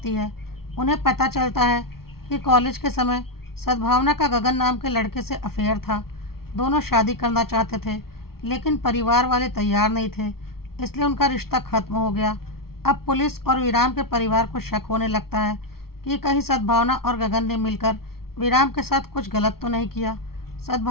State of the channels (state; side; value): late; right; 0.94 ms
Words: है। उन्हें पता चलता है कि कॉलेज के समय सद्भावना का गगन नाम के लड़के से अफेयर था। दोनों शादी करना चाहते थे, लेकिन परिवार वाले तैयार नहीं थे, इसलिए उनका रिश्ता खत्म हो गया। अब पुलिस और विराम के परिवार को शक होने लगता है कि कहीं सद्भावना और गगन ने मिलकर विराम के साथ कुछ गलत तो नहीं किया।